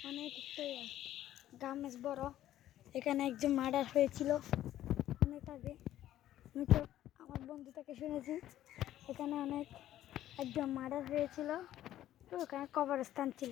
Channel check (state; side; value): quieter; right; 12.9 dB